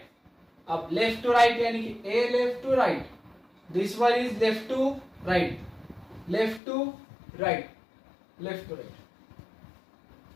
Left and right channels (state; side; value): drops out; right; at 6.6 s